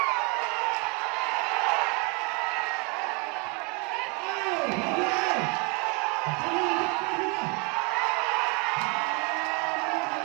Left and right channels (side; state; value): left; quieter; 30.6 dB